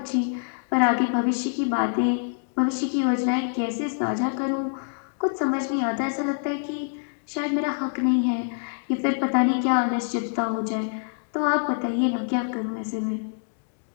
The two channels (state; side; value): silent; right; digital silence